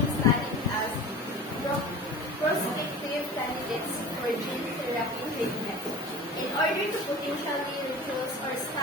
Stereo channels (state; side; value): normal; both; correlation 0.36